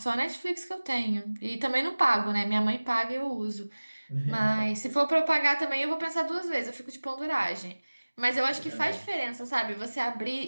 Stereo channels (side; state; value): both; inverted; correlation -1.00